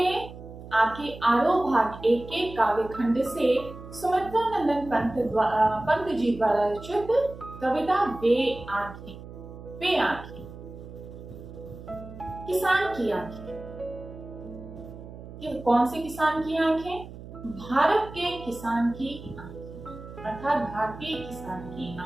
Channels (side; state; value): right; noise; hum, 14 dB below the sound